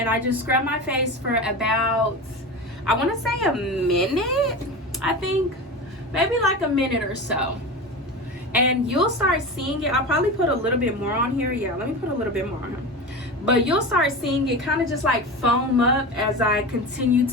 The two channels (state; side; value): normal; both; correlation 0.27